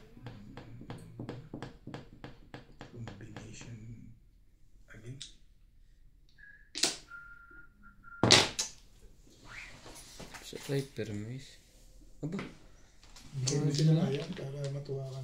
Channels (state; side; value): identical; both; correlation 1.00